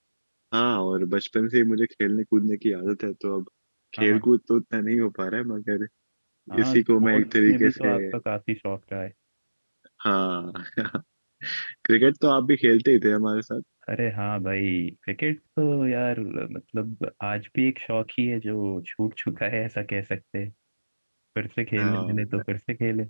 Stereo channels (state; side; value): inverted; both; correlation -1.00